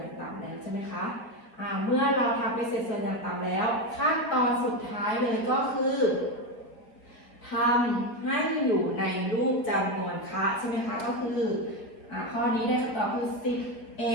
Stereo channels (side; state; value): right; late; 4.8 ms